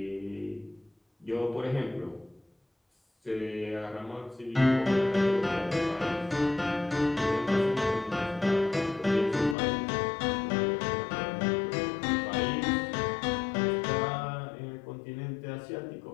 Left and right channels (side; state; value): right; drops out; at 9.6 s